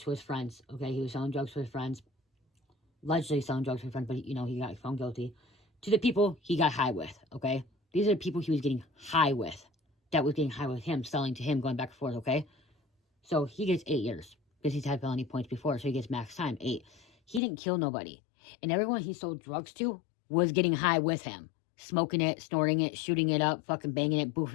to his friends, okay? He was selling drugs to his friends. Allegedly selling drugs to his friends, but, he got found guilty. To the people he got high with, okay? These are the people he was getting high with. That was getting high with him, selling to him, going back and forth, okay? So he gets 8 years because he's had felony points before, so he gets max time, 8. He didn't kill nobody. And everyone he sold drugs to was getting high with him. Smoking it, snorting it, shooting it up, fucking banging it,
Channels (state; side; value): drops out; right; at 17.4 s